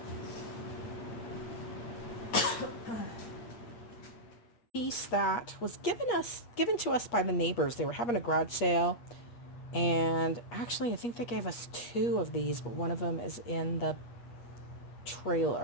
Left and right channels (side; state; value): right; late; 8.4 ms